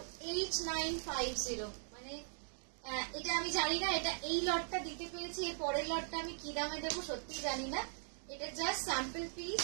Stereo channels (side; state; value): left; silent; digital silence